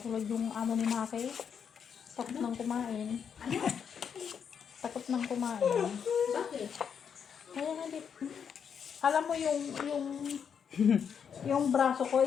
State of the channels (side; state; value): right; quieter; 7.3 dB